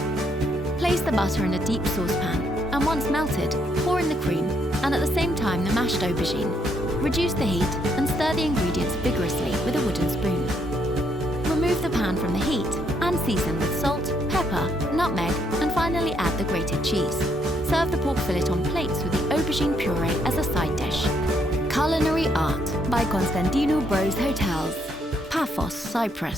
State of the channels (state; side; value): normal; both; correlation 0.73